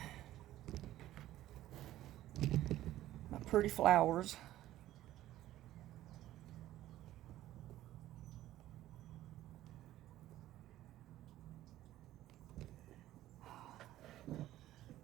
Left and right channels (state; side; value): quieter; left; 14.3 dB